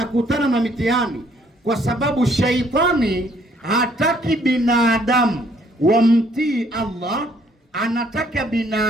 na mitihani? Kwa sababu shaitani hataki binadamu wamtii Allah, anataka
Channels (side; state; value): both; normal; correlation 0.64